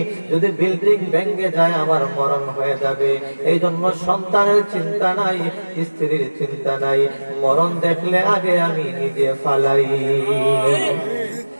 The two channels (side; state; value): both; inverted; correlation -1.00